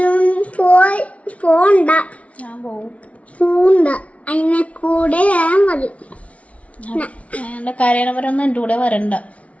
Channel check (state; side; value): late; right; 0.065 ms